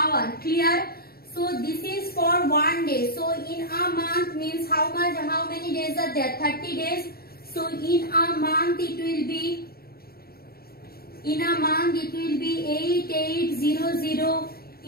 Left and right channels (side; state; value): right; late; 0.44 ms